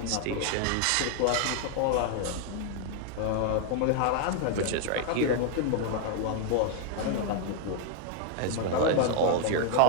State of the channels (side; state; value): both; different; correlation 0.00